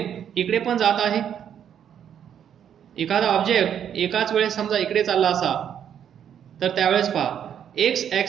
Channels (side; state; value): left; quieter; 9.0 dB